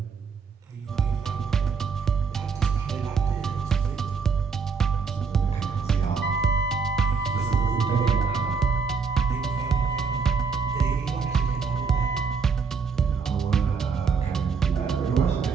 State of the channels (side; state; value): left; quieter; 5.4 dB